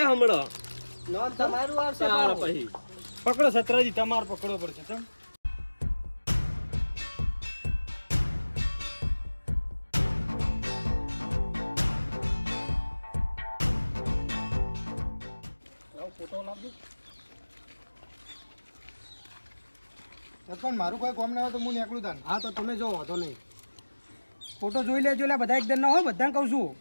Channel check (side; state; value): both; inverted; correlation -1.00